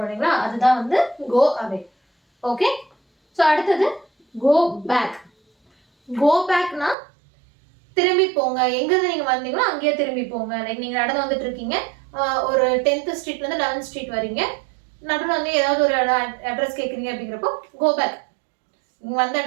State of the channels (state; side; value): drops out; left; at 7.0 s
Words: இல்லைங்களா, அதுதான் வந்து கோ அவே. ஓகே. ஸோ அடுத்தது கோ பேக். கோ பேக்னா திரும்பி போங்க, எங்கிருந்து நீங்க வந்தீங்களோ அங்கேயே திரும்பி போங்க. லைக் நீங்க நடந்து வந்துட்டு இருக்கீங்க, ஒரு 10th ஸ்ட்ரீட்ல இருந்து 11th ஸ்ட்ரீட் வரீங்க, நடுவில் வந்து ஏதாவது ஒரு அட்ரஸ் கேட்குறீங்க அப்படிங்கிறப்போ கோ பேக், நீங்க வந்த